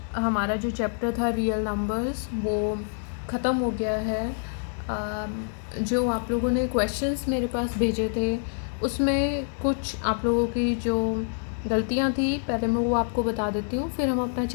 हमारा जो chapter था रियल नंबर्स वो ख़त्म हो गया है। जो आप लोगों ने क्वेश्चंस मेरे पास भेजे थे उसमें कुछ आप लोगों की जो गलतियां थी पहले मैं वो आपको बता देती हूँ, फिर हम अपना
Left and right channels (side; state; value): right; silent; 60 dB below the other